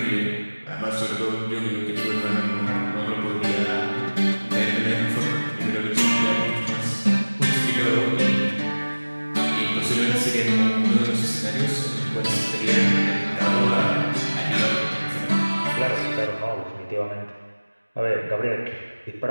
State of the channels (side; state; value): both; inverted; correlation -1.00